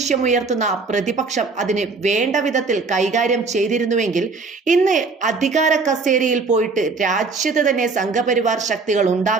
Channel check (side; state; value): left; quieter; 4.2 dB